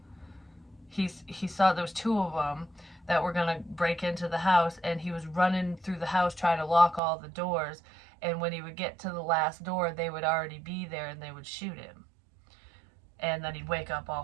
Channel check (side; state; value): left; drops out; at 7.0 s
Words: he saw there was two of them that were going to break into the house, and he was running through the house trying to lock all the doors, and when he would get to the last door, they would already be there and they would shoot him, and then he'd wake up all